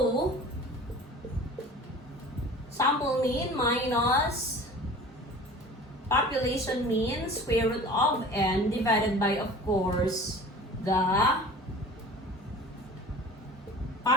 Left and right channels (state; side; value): normal; both; correlation 0.42